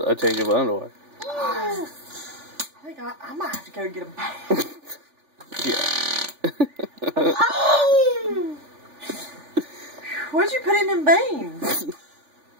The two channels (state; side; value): late; left; 3.4 ms